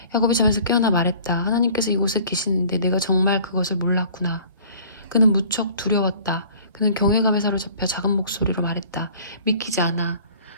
야곱이 잠에서 깨어나 말했다. 하나님께서 이곳에 계시는데 내가 정말 그것을 몰랐구나. 그는 무척 두려웠다. 그는 경외감에 사로잡혀 작은 목소리로 말했다. 믿기지 않아.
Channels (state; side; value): inverted; both; correlation -0.51